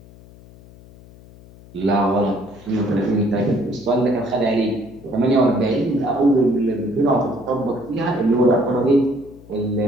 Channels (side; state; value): left; noise; hum, 22 dB below the sound